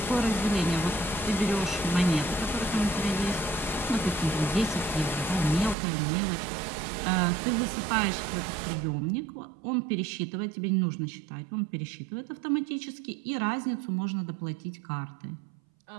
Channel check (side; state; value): left; drops out; at 5.8 s